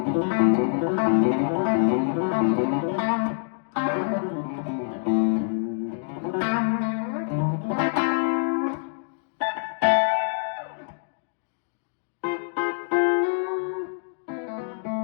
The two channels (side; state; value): right; silent; digital silence